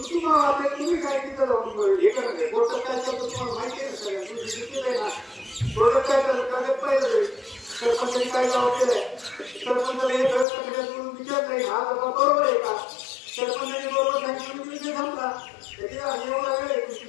वाटेल तुम्ही काय तिथं जाऊन हे करणार. कोर्टात काय चालतं तुम्हाला माहिती आहे ना सगळ्या, तुम्ही दिलेलं आहे ना. कोर्टात काय चालतं काय पाहिलं सरपंचाने काय जबाब दिलाय. सरपंचाला हे सगळं सगळ्यातून विचार नाही हा जबाब बरोबर आहे का. सरपंचाने बरोबर सांगितलं विषय संपला. त्याच्या एवढा वेळ आहे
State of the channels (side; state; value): right; drops out; at 10.5 s